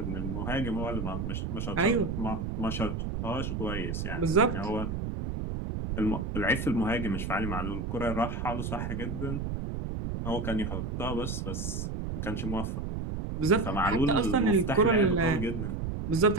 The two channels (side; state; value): right; noise; rumble, 3 dB below the sound